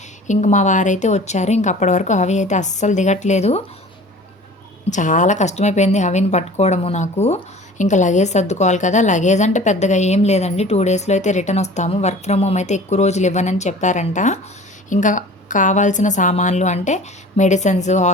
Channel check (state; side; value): normal; both; correlation 0.44